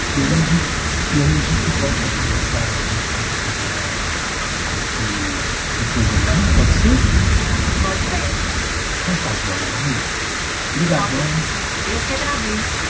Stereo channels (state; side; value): identical; both; correlation 1.00